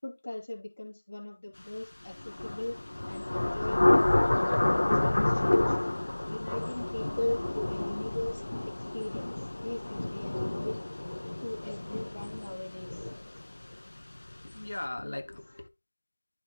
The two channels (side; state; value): both; inverted; correlation -1.00